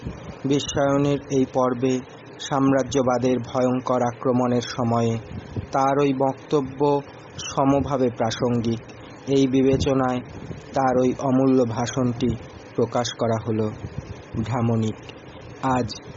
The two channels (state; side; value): identical; both; correlation 1.00